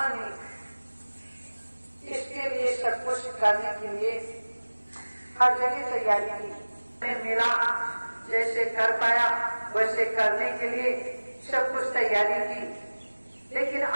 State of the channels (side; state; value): both; inverted; correlation -1.00